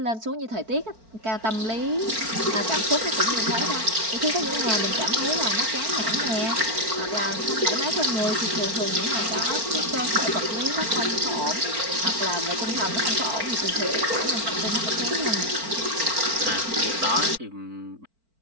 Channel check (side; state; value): left; late; 4.5 ms